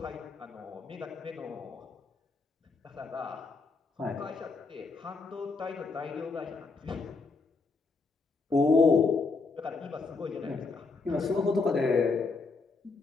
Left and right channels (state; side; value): quieter; right; 4.1 dB